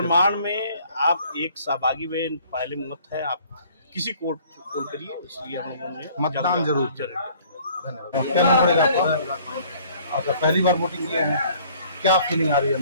में आप एक सहभागी में पहले मत है, आप किसी को वोट करिए। इसलिए हम लोगों ने मतदान जरूर करें। धन्यवाद। क्या नाम पड़ेगा आपका? आपका पहली बार वोटिंग किया है, क्या फीलिंग आ रही है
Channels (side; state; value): both; inverted; correlation -0.56